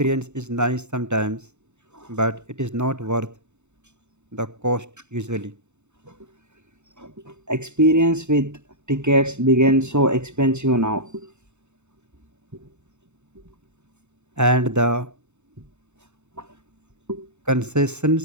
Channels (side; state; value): left; late; 0.83 ms